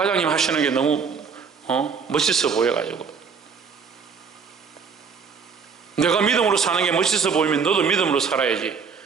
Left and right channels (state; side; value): quieter; left; 5.9 dB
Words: 하시는 게 너무 멋있어 보여가지고. 내가 믿음으로 사는 게 멋있어 보이면 너도 믿음으로 살아야지.